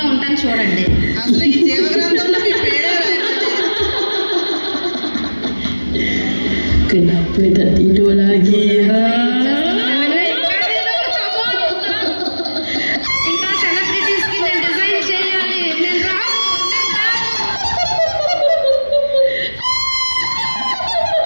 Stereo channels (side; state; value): both; inverted; correlation -1.00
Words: ఉంటాను చూడండి. అసలు ఈ జీవగ్రంథంలో మీ పేరే ఇంకా సెలబ్రిటీస్కి నేను డిజైన్ చేయాలి, నేను రాను.